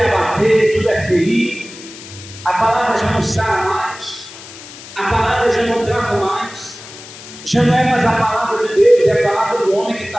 abater, tudo é ferir. A palavra já não sara mais, a palavra já não trata mais, já não é mais a palavra de Deus, é a palavra do homem que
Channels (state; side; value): noise; left; hiss, 16 dB below the sound